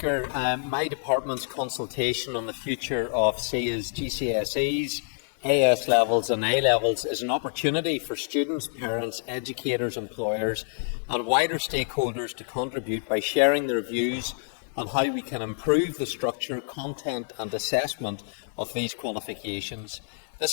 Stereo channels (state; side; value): silent; right; 60 dB below the other